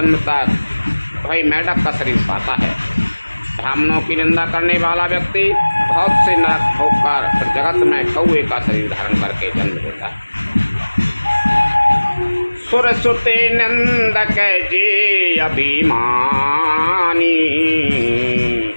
तक वही मेढक का शरीर पाता है। ब्राह्मणों की निंदा करने वाला व्यक्ति बहुत से नरक ठोककर फिर जगत में कौए का शरीर धारण करके जन्म लेता है। सुर सुते नंदक जे अभिमानी,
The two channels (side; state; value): both; inverted; correlation -1.00